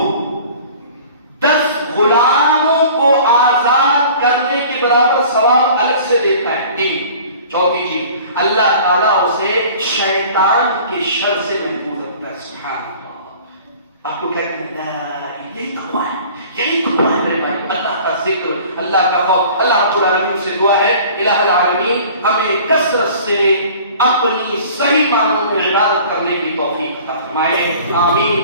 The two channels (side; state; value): both; inverted; correlation -0.46